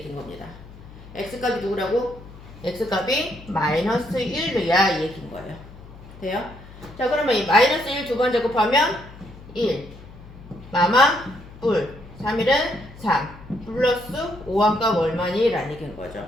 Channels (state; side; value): noise; left; hum, 18 dB below the sound